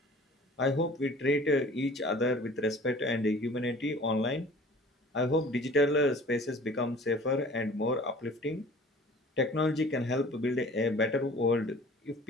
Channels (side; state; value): both; normal; correlation 0.47